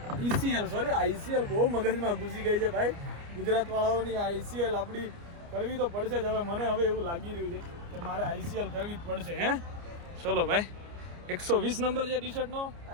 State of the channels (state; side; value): late; left; 29 ms